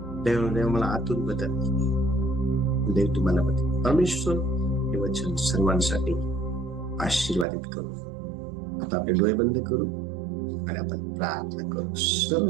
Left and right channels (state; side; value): drops out; left; at 7.5 s